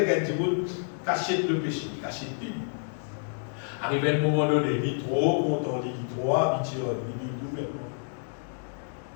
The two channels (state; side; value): silent; right; 59 dB below the other